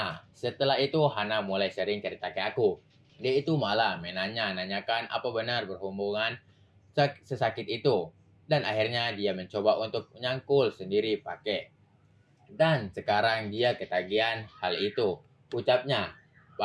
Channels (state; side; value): identical; both; correlation 1.00